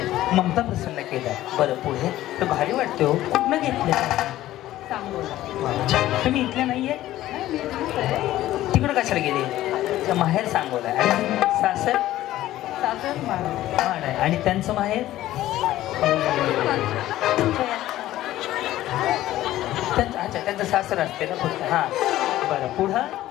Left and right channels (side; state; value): right; quieter; 14.6 dB